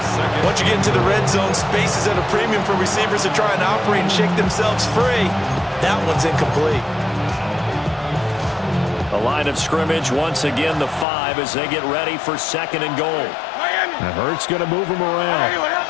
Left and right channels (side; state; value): right; drops out; at 11.1 s